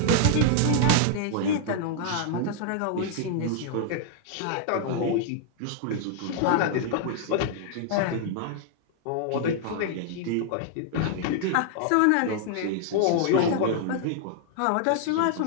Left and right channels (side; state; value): both; different; correlation -0.01